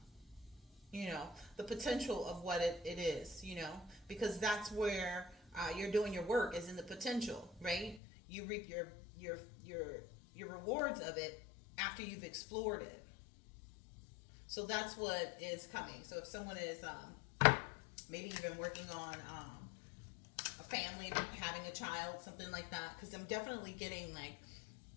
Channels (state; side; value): drops out; right; at 8.0 s